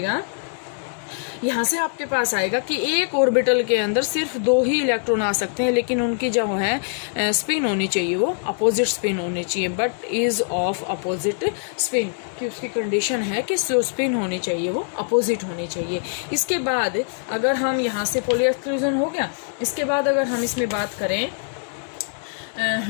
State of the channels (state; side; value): silent; right; digital silence